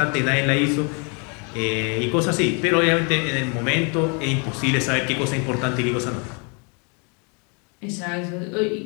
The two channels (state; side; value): quieter; right; 35.3 dB